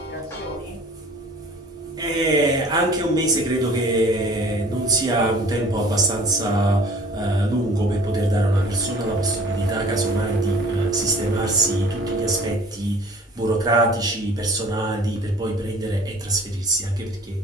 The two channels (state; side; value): normal; both; correlation 0.48